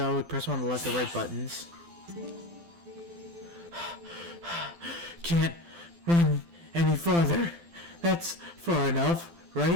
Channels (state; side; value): late; left; 12 ms